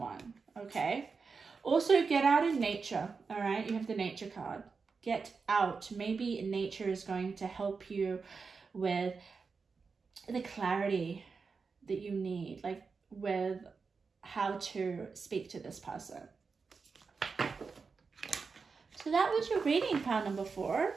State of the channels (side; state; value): left; quieter; 4.9 dB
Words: okay? Also, get out in nature, all right? You have the nature card. Get out. Maybe nature is going to help you with the clarity that you need, like with how to speak to this person. So that was your reading, pile number 4.